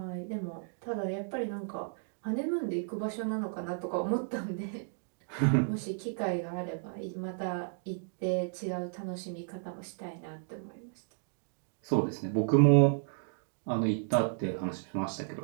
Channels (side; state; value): left; silent; digital silence